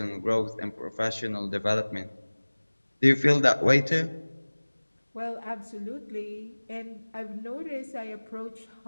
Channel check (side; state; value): both; inverted; correlation -1.00